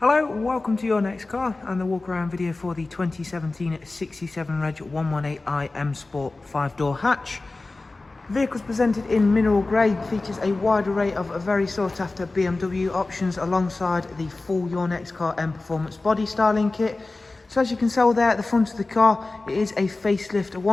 welcome to Your Next Car and the walk around video for the 2017 67 Reg 118i Sport 5-door hatch. The vehicle's presented in mineral grey, features a wide array of very sought after BMW options alongside the full Your Next Car Mperformance body styling kit. So as you can tell there at the front of the car, it is a Facelift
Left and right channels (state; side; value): quieter; right; 3.3 dB